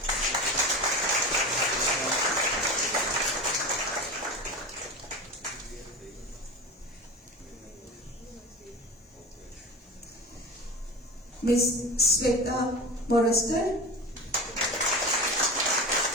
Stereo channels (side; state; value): both; normal; correlation 0.30